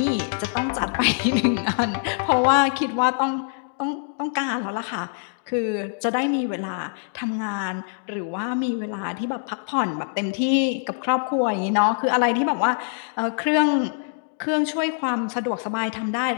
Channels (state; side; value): silent; right; digital silence